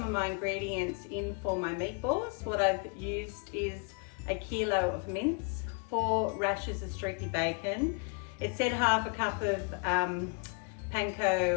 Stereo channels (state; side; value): quieter; right; 34.2 dB